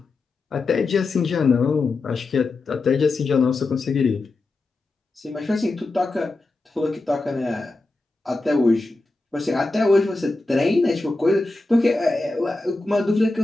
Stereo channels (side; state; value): right; quieter; 3.2 dB